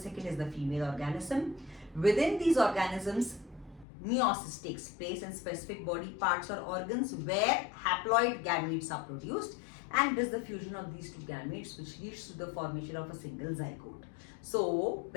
is the female organism. Within these organisms, meiosis takes place in specific body parts or organs where haploid gametes are produced, and it is the fusion of these two gametes which leads to the formation of a single zygote. So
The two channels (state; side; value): drops out; right; at 3.9 s